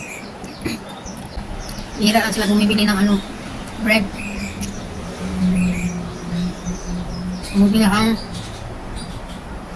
Hira lang sila bumibili ng ano, bread. Bumibili ang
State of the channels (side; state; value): both; identical; correlation 1.00